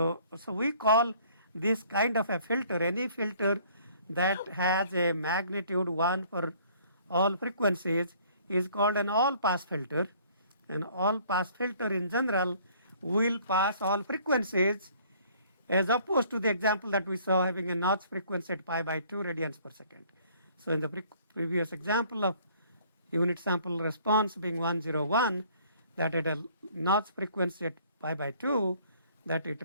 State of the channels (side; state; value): both; inverted; correlation -0.58